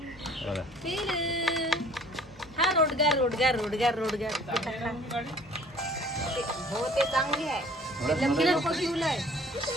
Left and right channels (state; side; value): normal; both; correlation 0.52